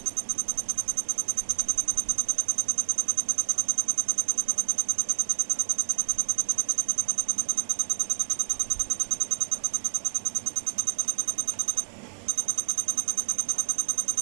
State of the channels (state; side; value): silent; left; 59 dB below the other